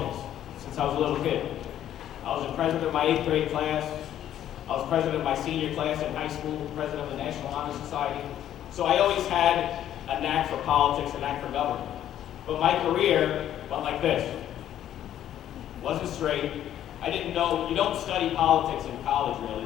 since I was a little kid. I was the president of my 8th grade class. I was president of my senior class in high school, president of the National Honor Society. So I always had a knack for politics, a knack for government. But my career went like this. Wasn't straight. I didn't know, you don't study politics in college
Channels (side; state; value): right; quieter; 11.3 dB